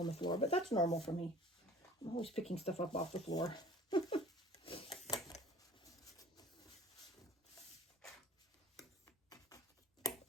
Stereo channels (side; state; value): both; normal; correlation 0.46